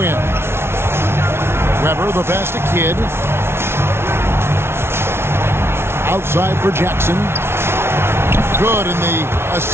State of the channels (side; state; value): left; late; 0.12 ms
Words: in. Weber, the pass to Kidd. Outside for Jackson. Good, and the